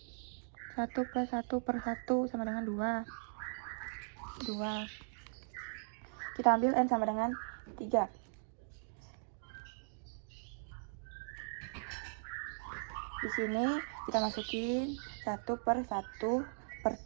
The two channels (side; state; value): left; silent; digital silence